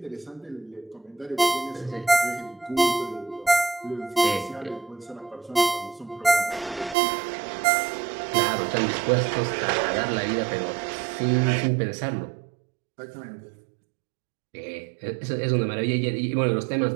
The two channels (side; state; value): left; drops out; at 7.0 s